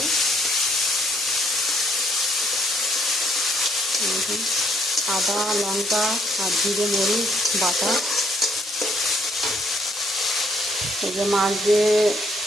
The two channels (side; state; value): both; normal; correlation 0.68